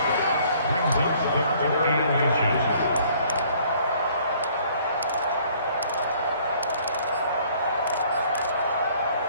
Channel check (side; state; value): both; inverted; correlation -0.59